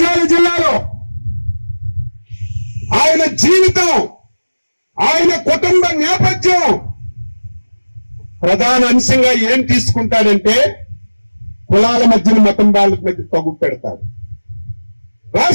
జిల్లాలో ఆయన జీవితం, ఆయన కుటుంబ నేపథ్యం ప్రధాన అంశంగా ఏం తీసుకుంటాడంటే కులాల మధ్యన మతం వాళ్ళ మధ్య తగ్గు పెడతాడు.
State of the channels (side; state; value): both; inverted; correlation -1.00